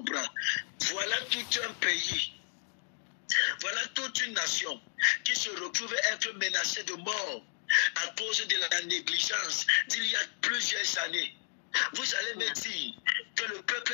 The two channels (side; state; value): right; silent; 56 dB below the other